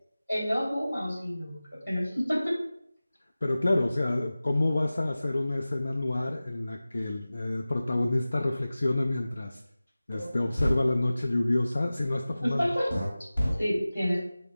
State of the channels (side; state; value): both; inverted; correlation -0.97